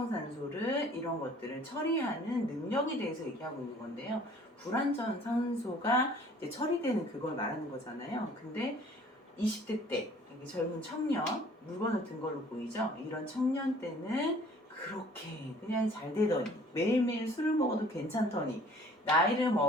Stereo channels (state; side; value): normal; both; correlation 0.53